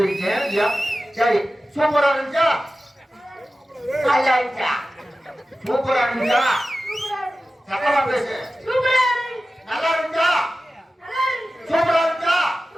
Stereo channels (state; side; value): normal; both; correlation 0.95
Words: சரி சூப்பரா இருந்துச்சா? நல்லா இருந்துச்சா? சூப்பரா இருந்துச்சா? சத்தமா பேசு. நல்லா இருந்துச்சா? சூப்பரா இருந்துச்சா?